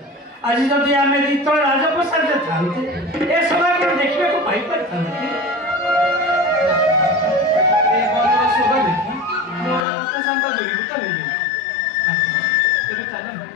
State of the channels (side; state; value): right; drops out; at 9.8 s